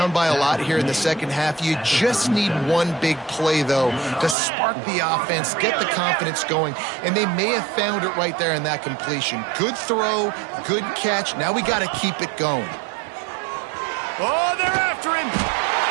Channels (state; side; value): drops out; left; at 4.4 s